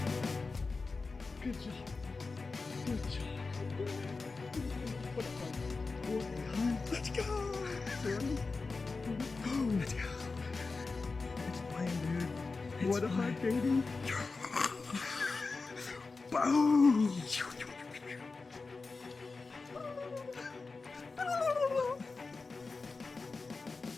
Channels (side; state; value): right; quieter; 4.1 dB